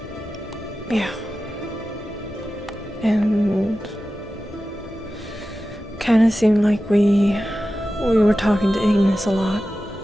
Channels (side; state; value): both; normal; correlation 0.94